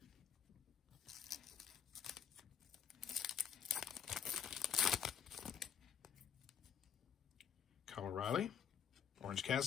Kyle O'Reilly, Orange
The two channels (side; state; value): right; quieter; 7.8 dB